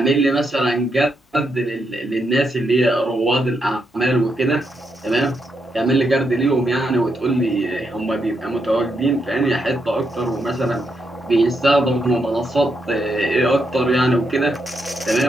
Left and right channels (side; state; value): both; normal; correlation 0.81